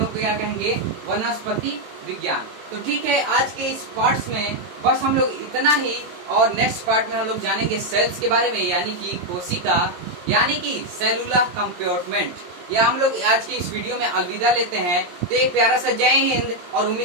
को क्या कहेंगे? वनस्पति विज्ञान। तो ठीक है, आज के इस पार्ट्स में बस हम लोग इतना ही, और नेक्स्ट पार्ट में हम लोग जानेंगे सेल्स के बारे में, यानी कि कोशिका, यानी कि सेलुलर कंपार्टमेंट। या हम लोग आज की इस वीडियो में अलविदा लेते हैं। तो एक प्यारा सा जय हिंद, और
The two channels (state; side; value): late; left; 22 ms